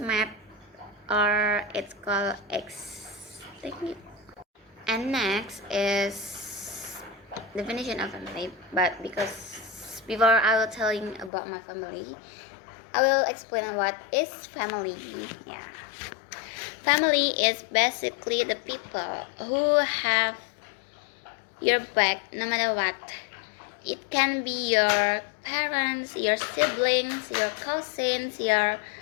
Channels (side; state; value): right; drops out; at 11.3 s